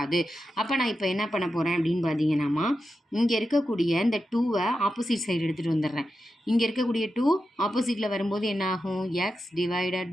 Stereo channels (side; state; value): both; normal; correlation 0.90